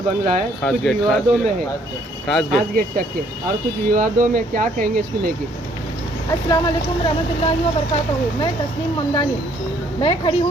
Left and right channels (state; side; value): normal; both; correlation 0.64